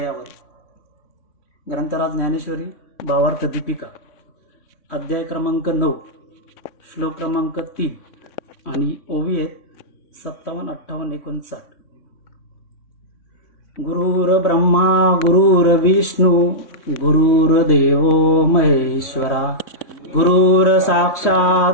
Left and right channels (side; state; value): right; late; 3.6 ms